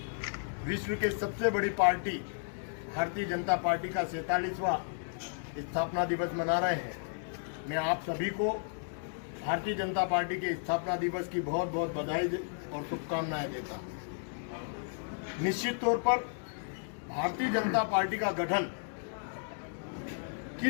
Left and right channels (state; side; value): silent; right; digital silence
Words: विश्व के सबसे बड़ी पार्टी भारतीय जनता पार्टी का 47वां स्थापना दिवस मना रहे हैं। मैं आप सभी को भारतीय जनता पार्टी के स्थापना दिवस की बहुत बहुत बधाई और शुभकामनाएं देता हूं। निश्चित तौर पर भारतीय जनता पार्टी का गठन